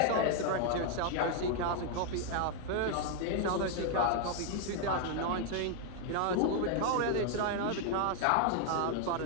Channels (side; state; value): both; different; correlation 0.00